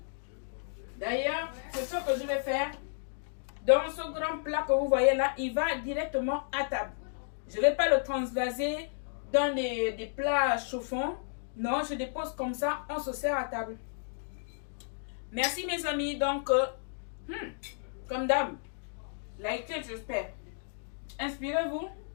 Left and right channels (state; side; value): silent; right; digital silence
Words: D'ailleurs, c'est ce que je vais faire. Dans ce grand plat que vous voyez là, il va directement à table. Je ne vais pas le transvaser dans des plats chauffants. Non, je dépose comme ça, on se sert à table. Merci mes amis, donc, comme d'hab, likez, j'espère. Inspirez-vous,